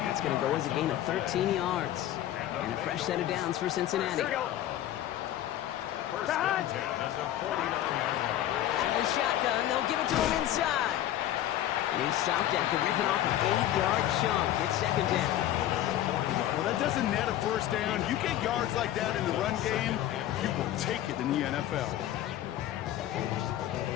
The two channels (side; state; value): right; quieter; 12.7 dB